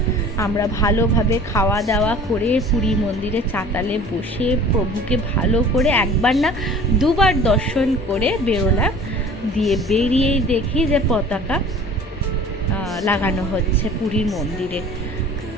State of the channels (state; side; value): normal; both; correlation 0.45